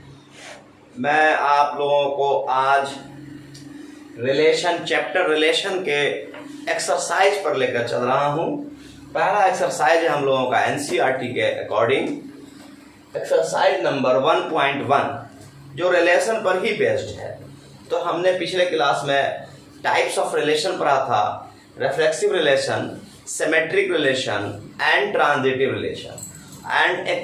मैं आप लोगों को आज चैप्टर रिलेशन के एक्सरसाइज पर लेकर चल रहा हूँ। पहला एक्सरसाइज है हम लोगों का एनसीईआरटी के अकॉर्डिंग एक्सरसाइज नंबर 1.1 जो रिलेशन पर ही बेस्ड है। तो हमने पिछले क्लास में टाइप्स ऑफ रिलेशन पढ़ा था, reflexive relation, symmetric relation and transitive relation and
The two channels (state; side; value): identical; both; correlation 1.00